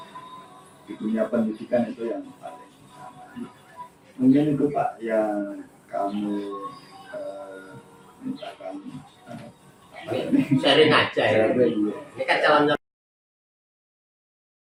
Di dunia pendidikan itu yang paling utama. Mungkin itu Pak yang kami mintakan Sharing aja ya. sharing. Ini kan calon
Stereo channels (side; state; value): both; identical; correlation 1.00